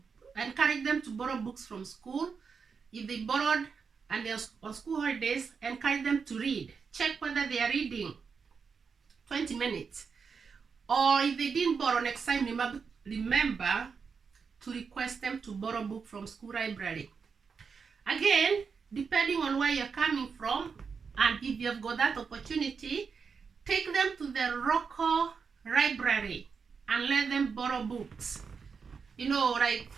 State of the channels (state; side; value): quieter; left; 5.7 dB